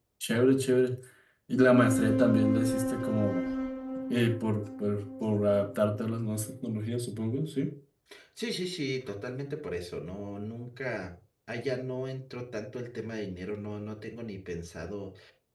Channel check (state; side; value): identical; both; correlation 1.00